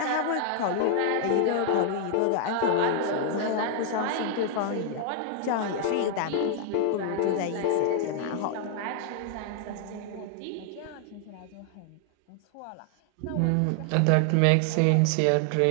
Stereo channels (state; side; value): different; both; correlation 0.00